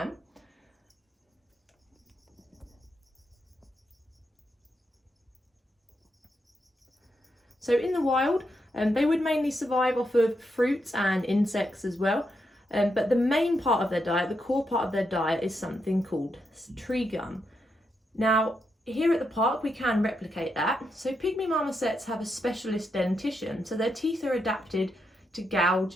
So in the wild, they would mainly survive off of fruits and insects as well. But the main part of their diet, the core part of their diet, is something called tree gum. Now, here at the park we can replicate that. So Pygmy Marmosets have a specialist dentition, so their teeth are adapted to gouge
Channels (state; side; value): normal; both; correlation 0.82